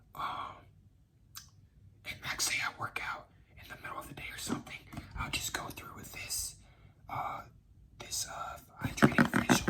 and like say I work out in the middle of the day or something, I'll just go through with this hydrating facial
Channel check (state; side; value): identical; both; correlation 1.00